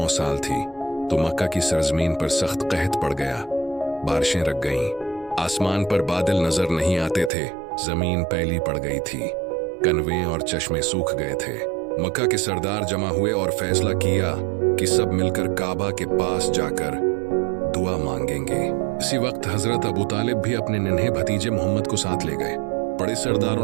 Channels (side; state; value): left; drops out; at 7.3 s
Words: साल थी तो मक्का की सरजमीन पर सख्त कहत पड़ गया। बारिशें रख गईं, आसमान पर बादल नजर नहीं आते थे, जमीन पैली पड़ गई थी, कनवे और चश्मे सूख गए थे। मक्का के सरदार जमा हुए और फैसला किया कि सब मिलकर काबा के पास जाकर दुआ मांगेंगे। इसी वक्त हजरत अबू तालिब भी अपने नन्हे भतीजे मोहम्मद को साथ ले गए। बड़े सरदारों